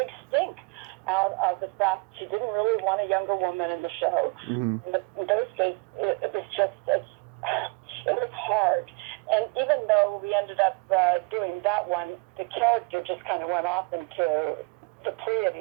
stink out of the fact she didn't really want a younger woman in the show. In those days, it was just, it was hard. And even though we ended up doing that one, the character just kind of went off into the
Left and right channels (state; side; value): quieter; left; 30.1 dB